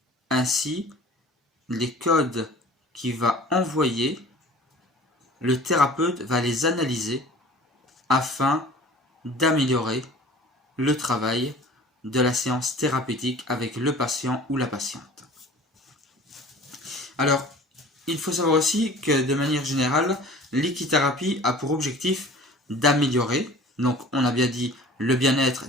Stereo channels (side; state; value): both; normal; correlation 0.44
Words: Ainsi, les codes qu'il va envoyer, le thérapeute va les analyser afin d'améliorer le travail de la séance thérapeutique avec le patient ou la patiente. Alors, il faut savoir aussi que de manière générale, l'équithérapie a pour objectif d'améliorer, donc on a bien dit le bien-être